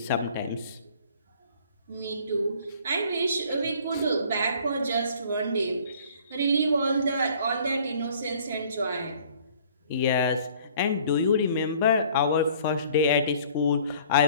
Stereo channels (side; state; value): both; inverted; correlation -0.54